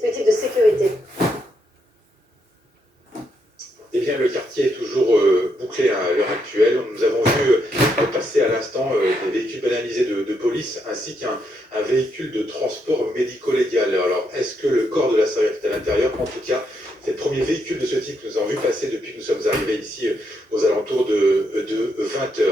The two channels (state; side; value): normal; both; correlation 0.78